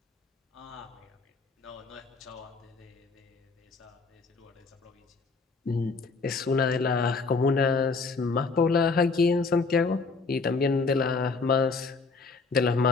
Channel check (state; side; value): quieter; right; 4.3 dB